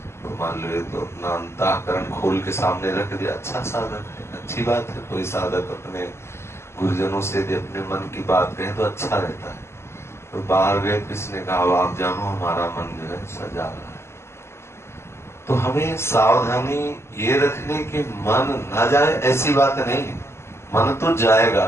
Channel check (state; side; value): late; right; 0.13 ms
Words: तो मान लो ये तो अपना अंतःकरण खोल के सामने रख दिया, अच्छा साधक है, अच्छी बात है। कोई साधक अपने गुरुजनों से यदि अपने मन की बात कहे तो अच्छा रहता है। तो बाहर गए, किसने कहा आप जानो हमारा मन जो है सजा रहा है। तो हमें सावधानी ये रखने की मन न जाए ऐसी बात नहीं है। मन तो